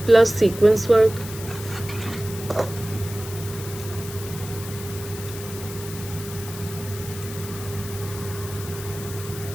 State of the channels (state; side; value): noise; left; hiss, 12 dB below the sound